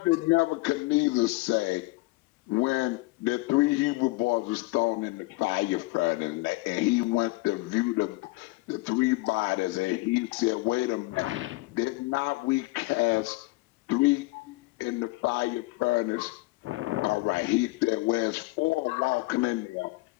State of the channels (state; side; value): quieter; right; 22.7 dB